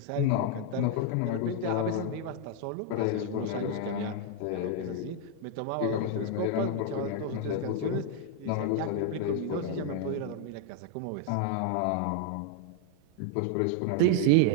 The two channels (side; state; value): both; different; correlation 0.00